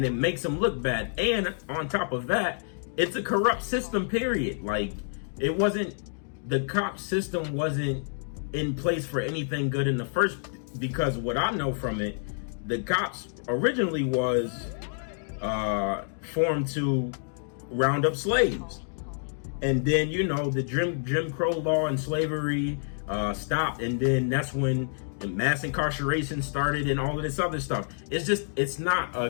it makes them look bad. And on top of that, it's a corrupt system, period. Like, it wasn't, the cop system wasn't in place for anything good in the first, because what I know from it, the cops originally was formed to round up slaves. And then, you know, the Jim Crow law and slavery stopped, and then that's when the mass incarceration started and all of this other stuff. It's just, it's not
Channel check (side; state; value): right; silent; digital silence